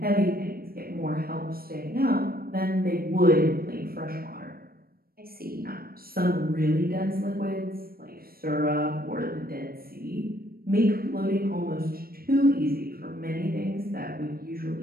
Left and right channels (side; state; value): left; late; 0.44 ms